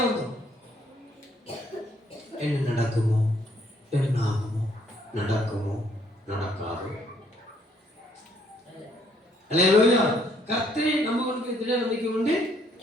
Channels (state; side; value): normal; both; correlation 0.67